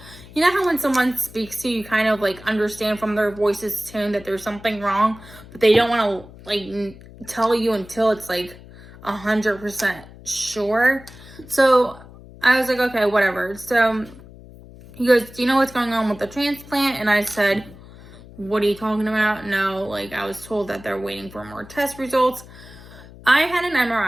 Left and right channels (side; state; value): left; noise; hum, 19 dB below the sound